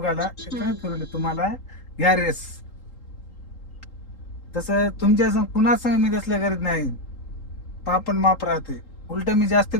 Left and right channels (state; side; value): late; right; 3.8 ms